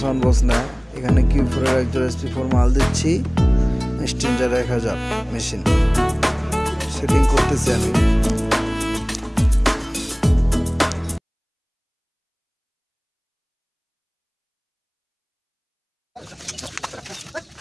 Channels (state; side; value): identical; both; correlation 1.00